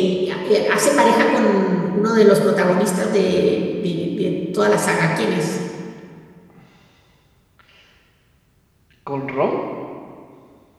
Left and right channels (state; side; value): identical; both; correlation 1.00